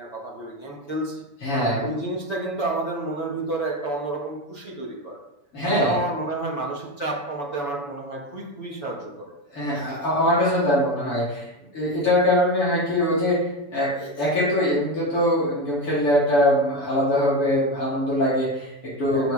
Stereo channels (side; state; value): right; late; 7.0 ms